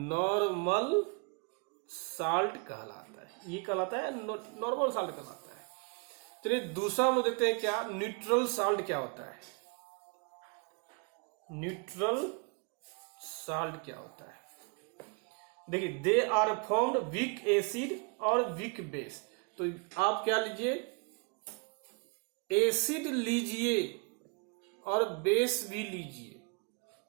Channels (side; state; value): left; quieter; 34.7 dB